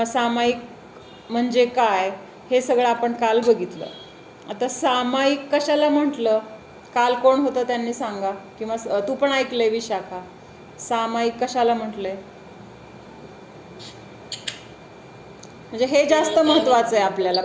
सामायिक म्हणजे काय हे सगळं आपण काल बघितलं. आता सामायिक कशाला म्हटलं, काल कोण होतं त्यांनी सांगा, किंवा तू पण ऐकलंय विशाखा, सामायिक कशाला म्हटलंय? म्हणजे हे जास्त महत्वाचं आहे आपल्याला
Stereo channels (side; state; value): both; identical; correlation 1.00